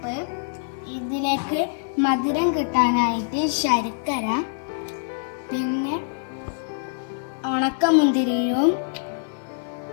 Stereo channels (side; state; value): right; silent; 57 dB below the other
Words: ഇതിലേക്ക് മധുരം കിട്ടാനായിട്ട് ശർക്കര, പിന്നെ ഉണക്കമുന്തിരിയും